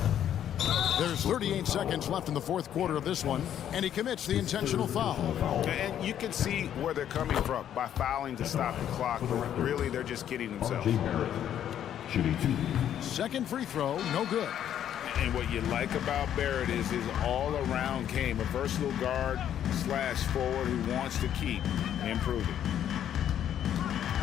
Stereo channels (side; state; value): right; quieter; 10.2 dB